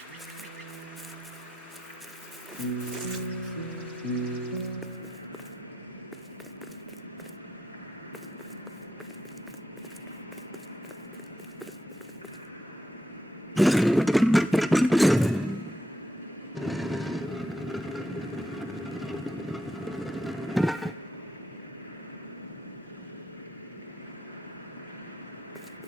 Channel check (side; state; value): both; normal; correlation 0.83